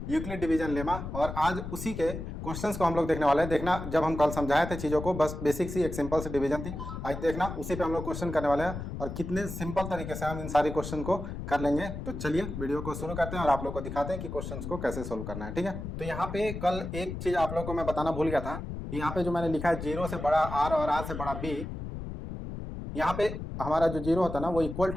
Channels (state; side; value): noise; left; rumble, 7 dB below the sound